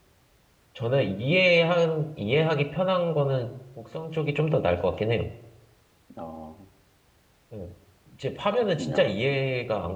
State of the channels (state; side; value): identical; both; correlation 1.00